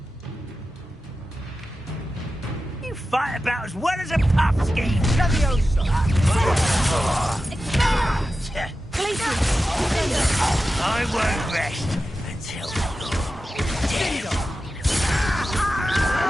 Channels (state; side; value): normal; both; correlation 0.93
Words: You fight about as well as a pumpkin. I won't rest until you're dead.